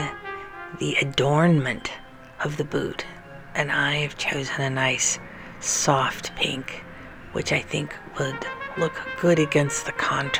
the adornment of the boot. And I've chosen a nice soft pink, which I think would look good against the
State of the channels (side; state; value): both; identical; correlation 1.00